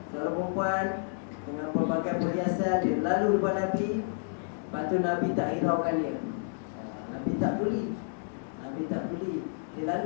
dengan pelbagai perhiasan, dia lalu depan Nabi. Lepas tu Nabi tak hiraukan dia. Nabi tak peduli. Dia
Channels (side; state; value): right; silent; digital silence